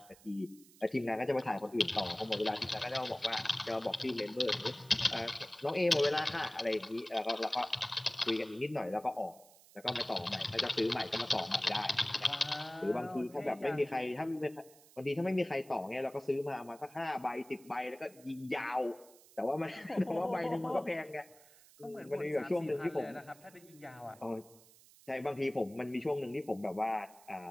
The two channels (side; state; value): right; noise; hiss, 24 dB below the sound